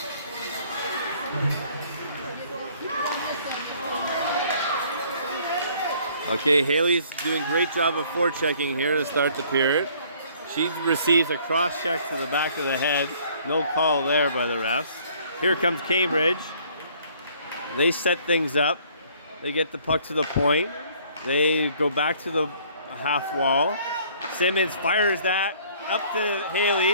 Okay, Haley's doing a great job of forechecking here to start the period. She receives a cross check to the back of the head. No call there by the refs. Here comes Cambridge. They set things up. They get the puck to the point. They go back to the half wall. Simmons fires that up to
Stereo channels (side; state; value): both; inverted; correlation -0.58